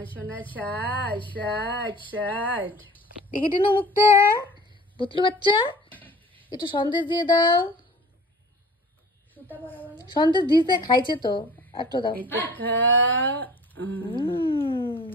সোনা ষাট। দেখি টিনু মুখটা, বুতলু বাচ্চা একটু সন্দেশ দিয়ে দাও। সন্দেশ দিতে খাইছে তো, একটু দাও।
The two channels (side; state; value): both; normal; correlation 0.45